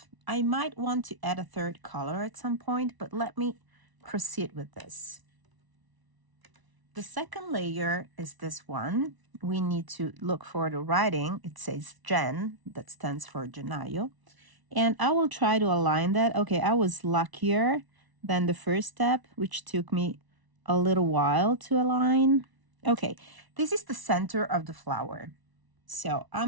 I might want to add a third color at some point, but let me proceed with this. The second layer is this one. We need to look for the writing. It says Jen, that stands for Genayo. And I will try to align that. Okay, I was luckier than the first step, which took me a little while to align. Okay, this is the center of the flower. So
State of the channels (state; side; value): late; left; 1.0 ms